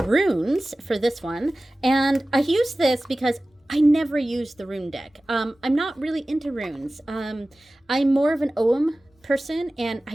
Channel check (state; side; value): normal; both; correlation 0.97